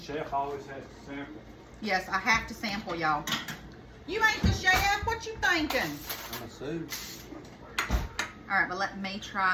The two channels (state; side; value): identical; both; correlation 1.00